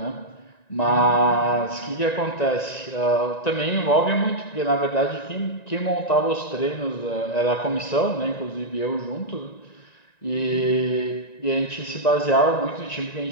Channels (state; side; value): late; right; 1.9 ms